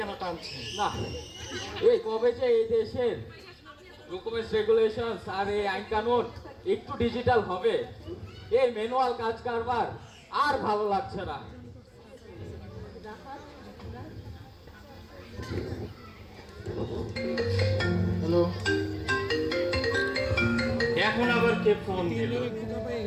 টানছে? না, এই কবে যে এই দেশের ডকুমেন্টস রেগুলেশন আর এই আইন কানুন একটু ডিজিটাল হবে, এই ম্যানুয়াল কাজ কারবার আর ভালো লাগছে না। হ্যালো, এখন আবার কে ফোন দিল?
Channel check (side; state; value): both; identical; correlation 1.00